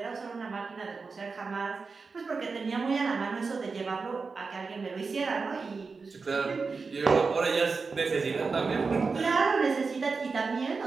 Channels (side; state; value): left; quieter; 4.6 dB